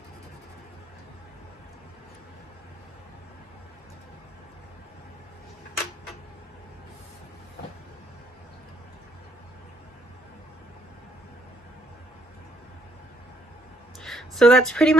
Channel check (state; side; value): normal; both; correlation 0.69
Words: So that's pretty